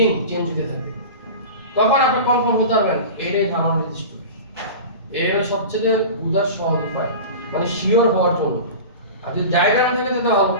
চেঞ্জ হতে থাকে, তখন আপনি কনফার্ম হতে পারবেন এটাই থার্মাল রেজিস্টর। এর সবচেয়ে বোঝার সহজ উপায় মানে শিওর হওয়ার জন্য। আর যদি ডায়াগ্রাম থাকে তো ভালো,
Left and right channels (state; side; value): inverted; both; correlation -0.33